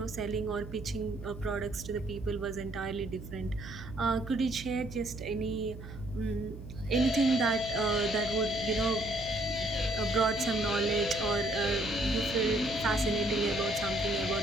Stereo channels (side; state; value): right; noise; hum, 12 dB below the sound